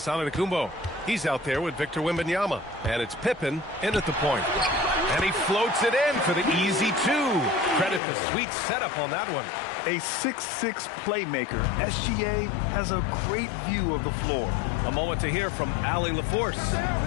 Antetokounmpo. He's out there with Victor Wembanyama. And it's Pippen in at the point. And he floats it in for the easy 2. Credit the sweet setup on that one. A 6'6" playmaker, SGA has a great view of the floor. A moment to hear from Allie LaForce.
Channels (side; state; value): right; drops out; at 8.0 s